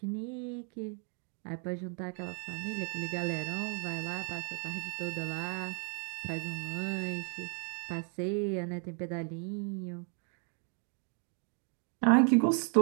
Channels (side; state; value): left; quieter; 39.8 dB